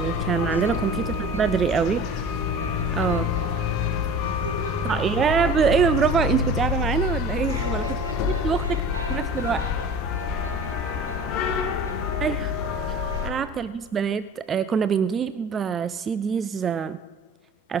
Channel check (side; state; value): both; normal; correlation 0.40